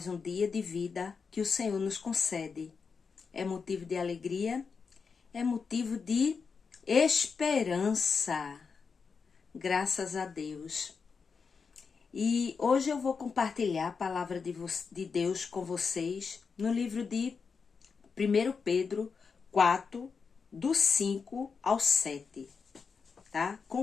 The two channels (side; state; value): right; quieter; 5.4 dB